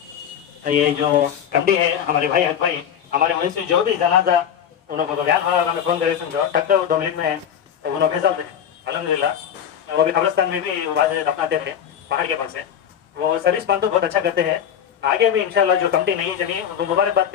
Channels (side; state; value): right; quieter; 9.0 dB